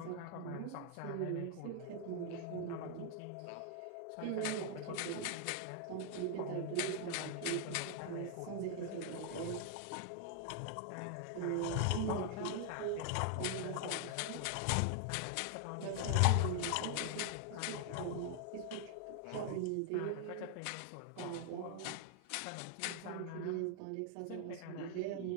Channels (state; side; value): different; both; correlation 0.00